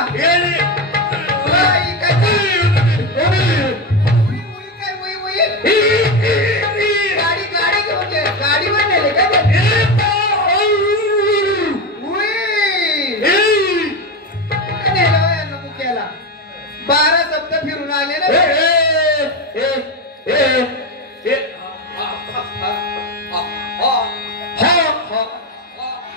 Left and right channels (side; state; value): both; normal; correlation 0.17